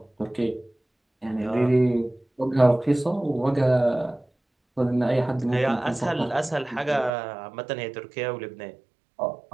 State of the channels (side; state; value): left; drops out; at 7.1 s